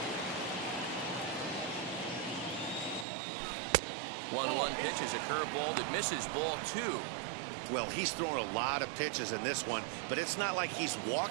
One pitch is a curveball that misses, ball 2. Well, he's thrown a lot of pitches in this one, but it's not like he's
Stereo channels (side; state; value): left; drops out; at 3.1 s